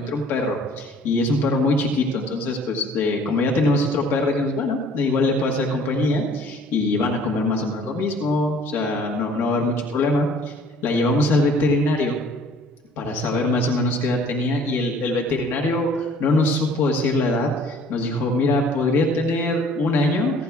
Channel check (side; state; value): both; normal; correlation 0.54